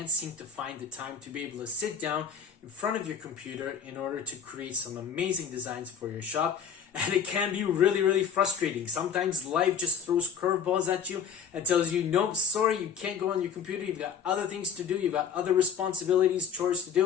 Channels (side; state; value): right; quieter; 7.4 dB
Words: seem to find the time to be able to sit down in front of your computer in order to create some amazing designs for your shop. And it can be really frustrating. Sometimes life just throws curveballs at you and tells you, nope, sorry, you can't go on your computer. You've got other things to do. You've got other responsibilities, chores to